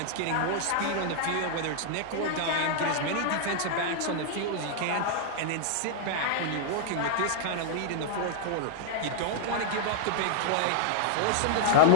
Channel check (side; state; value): both; different; correlation -0.01